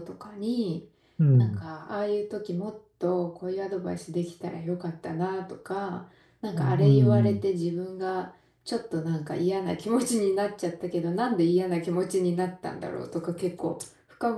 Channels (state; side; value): identical; both; correlation 1.00